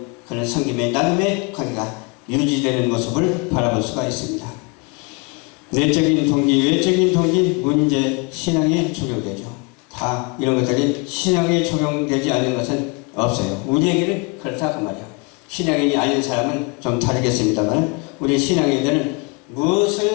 그런 섬김의 나눔의 관계가 유지되는 모습을 바라볼 수가 있습니다. 내적인 동기, 외적인 동기, 문제, 신앙에 적용되죠. 다 이런 것들이 신앙에 적용되지 않는 것은 없어요. 우리에게는 그렇다 그 말이에요. 신앙인이 아닌 사람은 좀 다르겠습니다만 우리 신앙인들은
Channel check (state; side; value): quieter; right; 31.0 dB